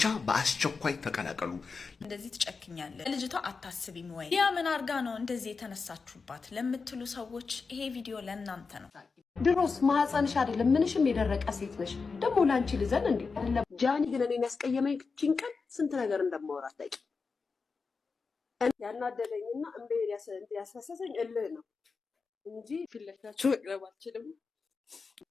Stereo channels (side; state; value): right; quieter; 4.7 dB